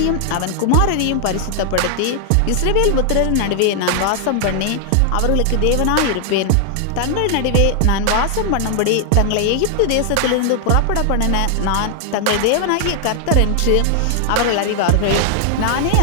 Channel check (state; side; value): different; both; correlation 0.00